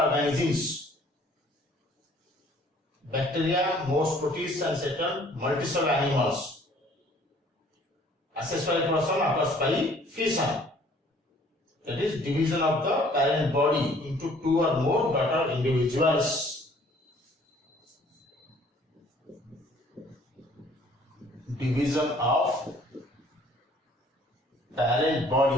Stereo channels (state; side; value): normal; both; correlation 0.57